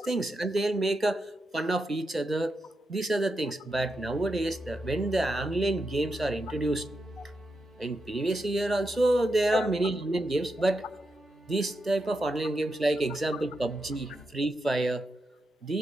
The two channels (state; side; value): normal; both; correlation 0.86